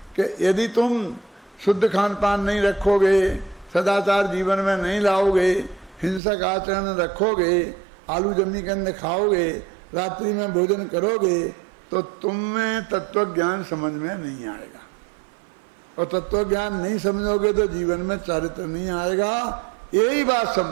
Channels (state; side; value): drops out; left; at 6.2 s